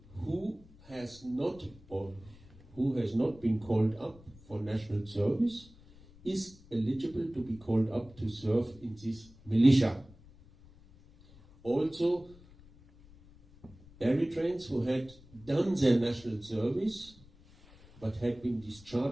who has not been called up for national service is eligible to be called up to serve in this militia. Also, Eritreans who had done their national service but had been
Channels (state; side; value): noise; left; rumble, 23 dB below the sound